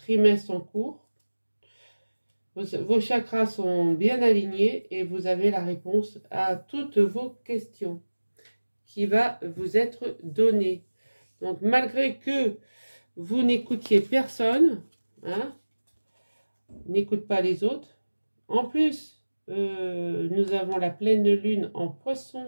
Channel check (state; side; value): inverted; both; correlation -1.00